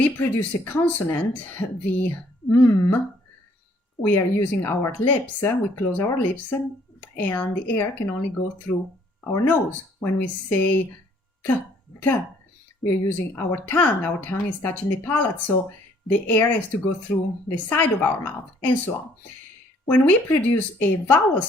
produce a consonant, the we are using our lips, we close our lips, and the air can only go through our nose. When we say t, we are using our tongue is touching the palate, so the air has to go through the side of our mouth, and so on. When we produce a vowel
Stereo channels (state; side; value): normal; both; correlation 0.62